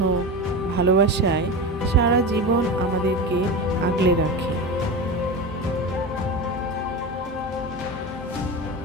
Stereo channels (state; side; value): normal; both; correlation 0.24